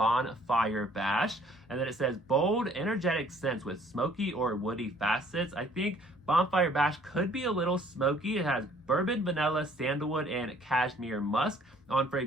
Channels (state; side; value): normal; both; correlation 0.58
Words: Bash. And then it says bold, energetic scents with smoky or woody facets. I think Bonfire Bash could be a little smoky. It has bourbon, vanilla, sandalwood, and cashmere musk. On